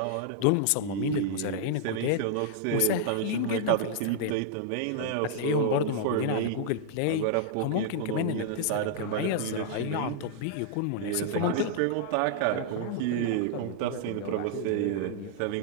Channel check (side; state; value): both; different; correlation -0.01